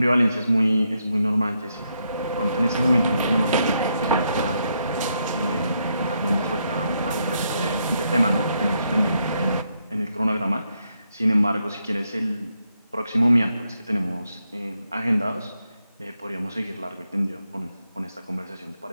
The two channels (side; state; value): both; inverted; correlation -0.78